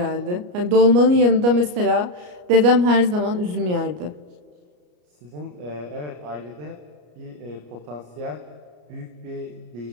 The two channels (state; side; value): late; left; 34 ms